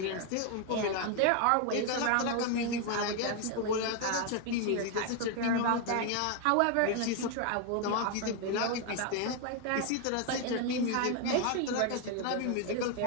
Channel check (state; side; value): different; both; correlation 0.01